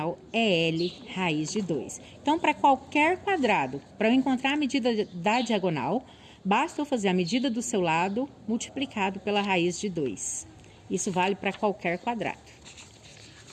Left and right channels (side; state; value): both; identical; correlation 1.00